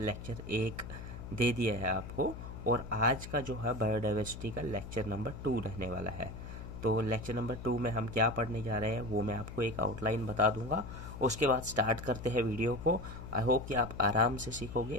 1 दे दिया है आपको, और आज का जो है बायोडाइवर्सिटी का लेक्चर नंबर 2 रहने वाला है। तो लेक्चर नंबर 2 में हम क्या पढ़ने जा रहे हैं वो मैं आपको एक आउटलाइन बता दूंगा, उसके बाद स्टार्ट करते हैं वीडियो को। आई होप कि आप आराम से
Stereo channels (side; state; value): left; noise; hum, 11 dB below the sound